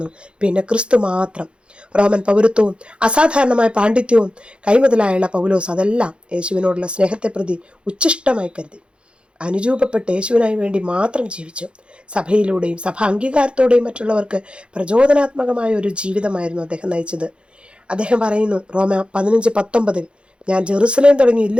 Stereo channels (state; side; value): late; left; 0.057 ms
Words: പിന്നെ ക്രിസ്തു മാത്രം. റോമൻ പൗരത്വവും അസാധാരണമായ പാണ്ഡിത്യവും കൈമുതലായുള്ള പൗലോസ് അതെല്ലാം യേശുവിനോടുള്ള സ്നേഹത്തെ പ്രതി ഉച്ഛിഷ്ടമായി കരുതി അനുരൂപപ്പെട്ട് യേശുവിനായി വേണ്ടി മാത്രം ജീവിച്ചു. സഭയിലൂടെയും സഭ അംഗീകാരത്തോടെയും മറ്റുള്ളവർക്ക് പ്രചോദനാത്മകമായ ഒരു ജീവിതമായിരുന്നു അദ്ദേഹം നയിച്ചത്. അദ്ദേഹം പറയുന്നു, റോമ 15:19, ഞാൻ ജെറുസലേം തുടങ്ങി